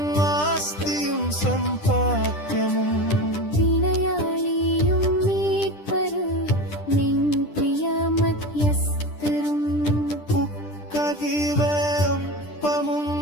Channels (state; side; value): late; right; 10 ms